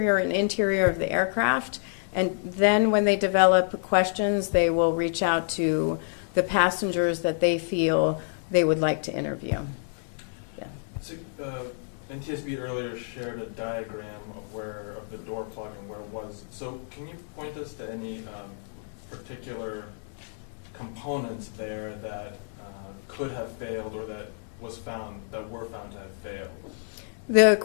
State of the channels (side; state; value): right; silent; 59 dB below the other